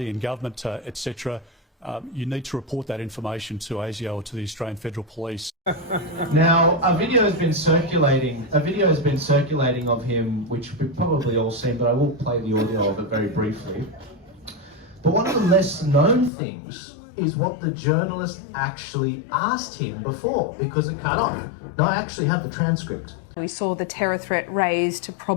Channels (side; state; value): right; drops out; at 16.3 s